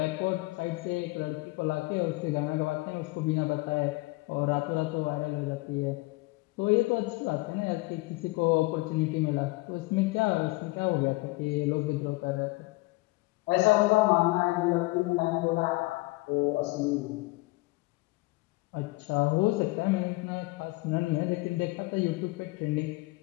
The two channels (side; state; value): right; quieter; 23.1 dB